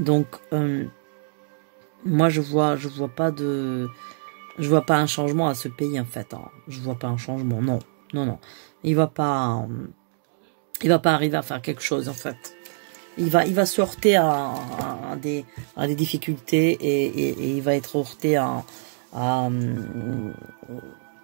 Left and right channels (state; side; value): silent; left; digital silence